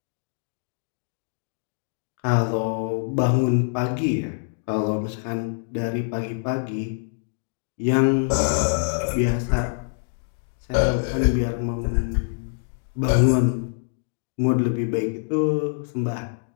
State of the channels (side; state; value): right; silent; 62 dB below the other